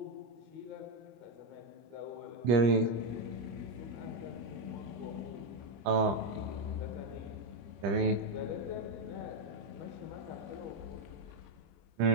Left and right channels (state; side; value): late; left; 25 ms